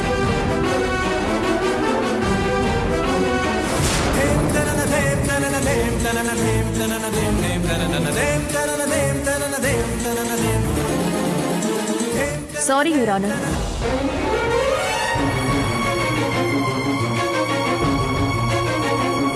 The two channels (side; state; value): both; identical; correlation 1.00